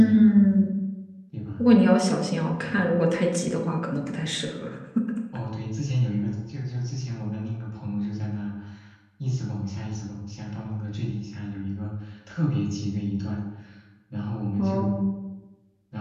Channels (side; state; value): both; identical; correlation 1.00